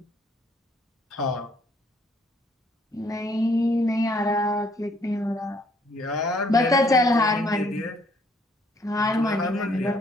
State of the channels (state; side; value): normal; both; correlation 0.65